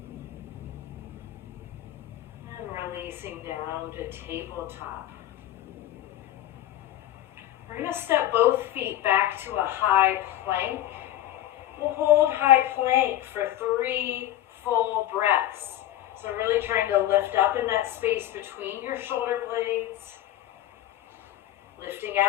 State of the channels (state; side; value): quieter; right; 13.3 dB